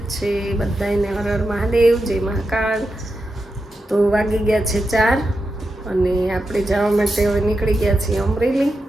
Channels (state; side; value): normal; both; correlation 0.88